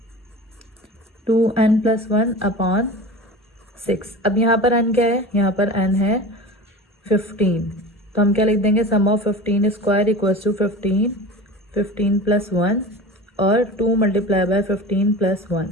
2n plus 1 upon 6. अब यहाँ पर n क्या है? यहाँ पर n है 15. तो हम क्या लिख देंगे? Sum of 15 square equals to 15 plus 1 और 2 मल्टीप्लाई बाय 15 प्लस 1.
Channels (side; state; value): both; normal; correlation 0.34